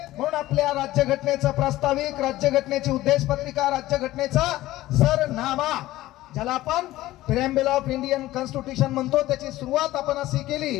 म्हणून आपल्या राज्यघटनेचं प्रास्ताविक, राज्यघटनेची उद्देशपत्रिका, राज्यघटनेचा सरनामा ज्याला आपण प्रिॲम्बल ऑफ इंडियन कॉन्स्टिट्यूशन म्हणतो, त्याची सुरुवात आपण अशी केली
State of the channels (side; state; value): right; quieter; 16.3 dB